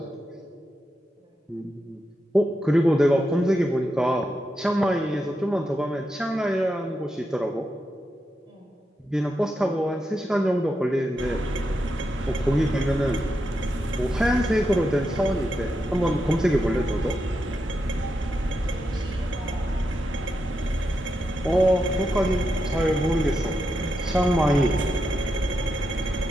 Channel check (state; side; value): normal; both; correlation 0.85